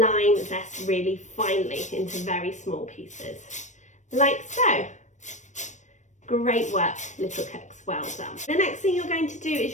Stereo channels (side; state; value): right; late; 0.35 ms